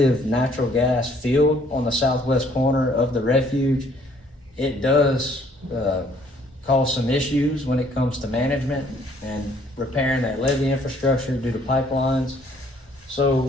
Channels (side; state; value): both; normal; correlation 0.62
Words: natural gas field on the southwest corner of the refuge. It does cause some issues when it comes to management and repairing that levee infrastructure due to pipelines.